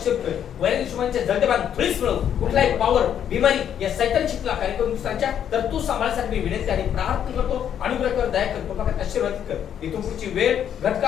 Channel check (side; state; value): right; quieter; 9.3 dB